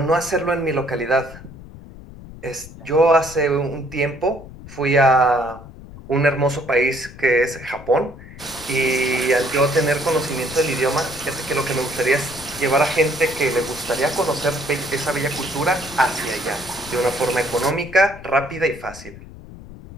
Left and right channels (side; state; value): left; noise; rumble, 16 dB below the sound